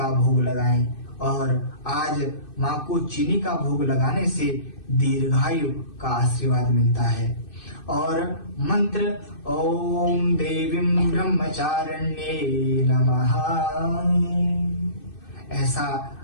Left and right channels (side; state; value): right; late; 2.6 ms